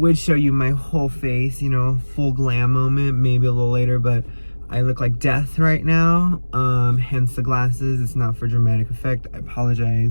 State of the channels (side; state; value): both; inverted; correlation -1.00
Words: show you my whole face, full glam moment, maybe a little later, but I look like death right now, hence the glasses. It's not for dramatic effect. I